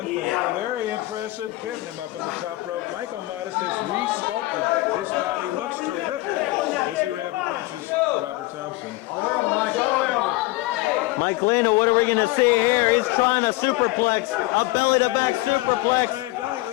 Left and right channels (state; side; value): quieter; right; 19.9 dB